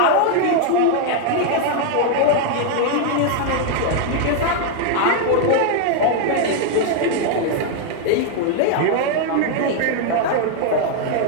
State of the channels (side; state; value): both; different; correlation 0.00